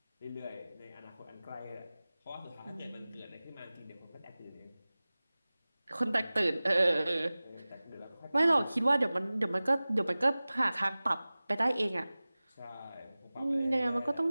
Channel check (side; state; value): both; inverted; correlation -0.98